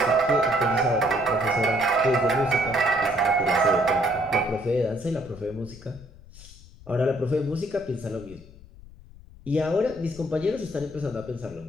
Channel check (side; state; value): left; noise; rumble, 20 dB below the sound